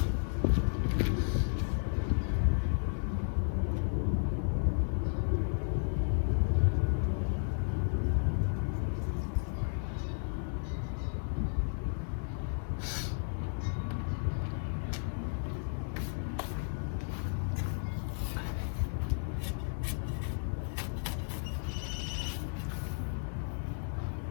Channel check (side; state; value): right; silent; digital silence